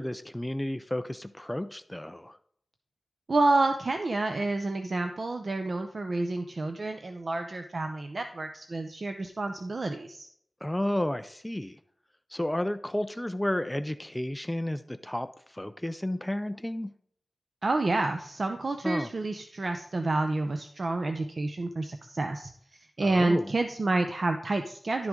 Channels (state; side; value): normal; both; correlation 0.97